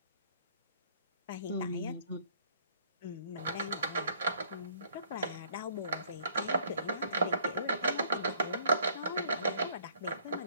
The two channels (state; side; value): inverted; both; correlation -0.60